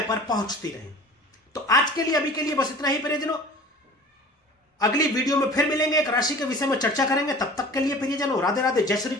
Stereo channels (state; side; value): normal; both; correlation 0.43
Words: पर पहुंचती रहें। तो आज के लिए, अभी के लिए बस इतना ही प्रियजनों। अगली वीडियो में फिर मिलेंगे, एक राशि के विषय में चर्चा करेंगे। तब तक के लिए प्रियजनों राधे राधे, जय श्री